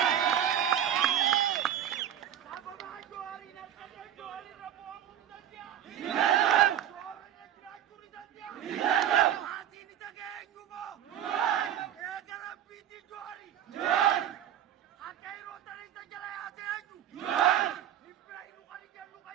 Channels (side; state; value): left; quieter; 10.5 dB